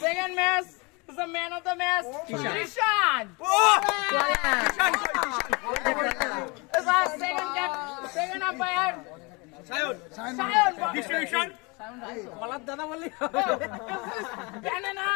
second match is the man of the match Krishan is our second umpire Sayon distribution বলার দাদা বললি banana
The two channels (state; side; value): quieter; right; 28.3 dB